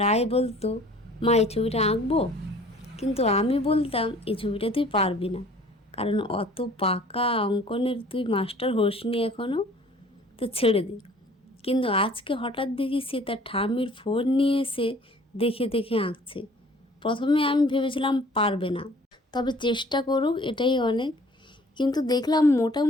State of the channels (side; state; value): both; normal; correlation 0.52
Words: বলতো, মা এই ছবিটা আঁকবো, কিন্তু আমি বলতাম এই ছবিটা তুই পারবি না, কারণ অত পাকা অঙ্কনের তুই মাস্টার হোসনি এখনও, তো ছেড়ে দে। কিন্তু আজকে হঠাৎ দেখি সে তার ঠাম্মির ফোন নিয়ে এসে দেখে দেখে আঁকছে। প্রথমে আমি ভেবেছিলাম পারবে না, তবে চেষ্টা করুক এটাই অনেক। কিন্তু দেখলাম